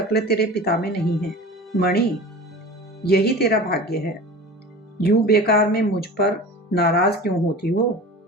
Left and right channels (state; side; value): normal; both; correlation 0.36